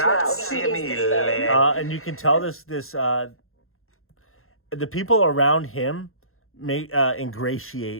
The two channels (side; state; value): right; late; 0.61 ms